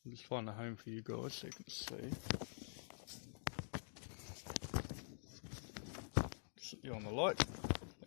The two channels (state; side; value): silent; right; digital silence